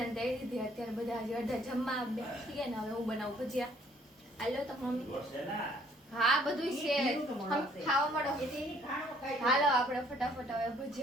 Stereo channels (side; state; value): both; normal; correlation 0.62